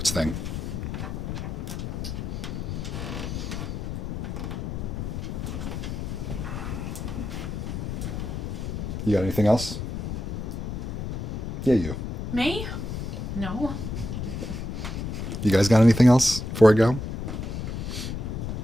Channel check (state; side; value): noise; left; rumble, 4 dB below the sound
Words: thing. You got anything else? Yeah, you. Me? No. You guys got anything else before I go?